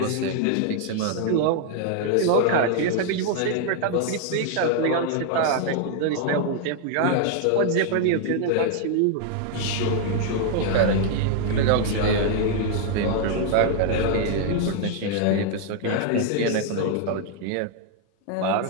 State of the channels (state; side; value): different; both; correlation 0.00